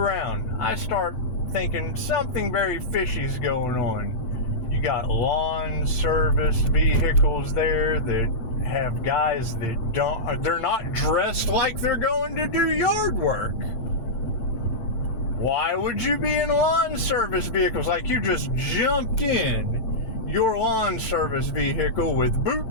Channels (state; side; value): late; right; 8.9 ms